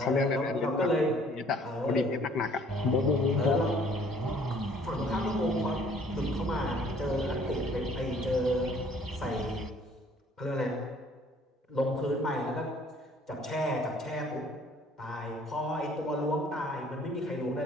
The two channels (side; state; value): both; normal; correlation 0.58